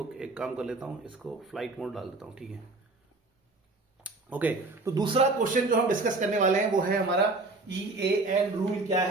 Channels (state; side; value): quieter; left; 3.4 dB